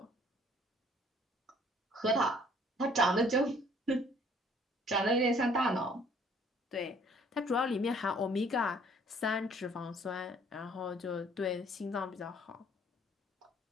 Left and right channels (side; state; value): both; normal; correlation 0.58